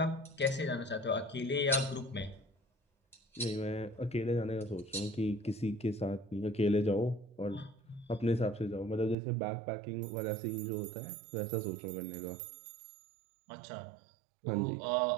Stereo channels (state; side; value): drops out; left; at 9.2 s